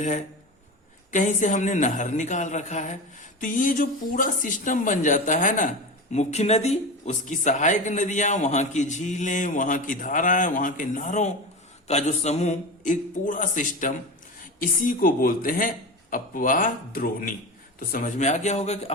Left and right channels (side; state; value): both; normal; correlation 0.25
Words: कहीं से हमने नहर निकाल रखा है। तो ये जो पूरा सिस्टम बन जाता है ना, मुख्य नदी, उसकी सहायक नदियां, वहां की झीलें, वहां की धाराएं, वहां के नहरों का जो समूह, एक पूरा सिस्टम, इसी को बोलते हैं अपवाह द्रोणी। तो समझ में आ गया होगा कि